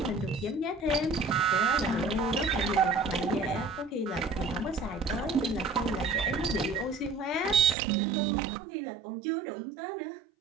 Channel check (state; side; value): drops out; left; at 7.8 s